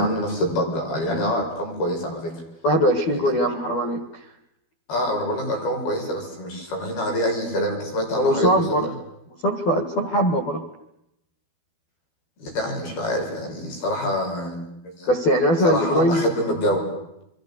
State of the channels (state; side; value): late; right; 12 ms